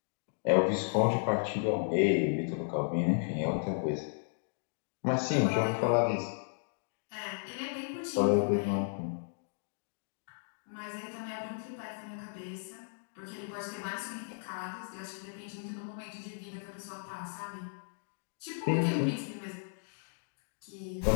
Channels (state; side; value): silent; right; digital silence